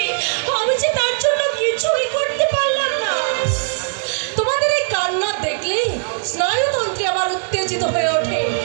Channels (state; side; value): silent; left; digital silence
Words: আমি যে তার জন্য কিছুই করতে পারলাম না। তোমাদের এই কান্না দেখলেই স্নায়ুতন্ত্রে আমার উত্তেজিত হয়ে ওঠে।